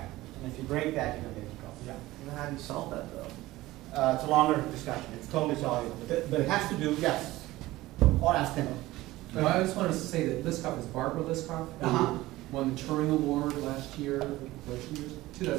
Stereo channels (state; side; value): quieter; left; 17.7 dB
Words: And if you break that, you're going to get in trouble. Yeah. And how do you solve that though? It's a longer discussion. It's totally soluble. But it has to do, yes. Or ask Tim. No, I just wanted to say that Liskov is Barbara Liskov, who Uh-huh. won the Turing Award last year,